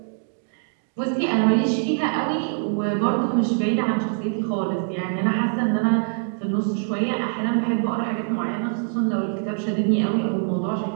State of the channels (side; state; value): left; silent; 57 dB below the other